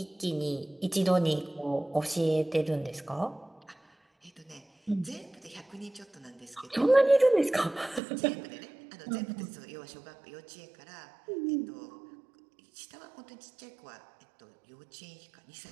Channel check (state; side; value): drops out; left; at 8.0 s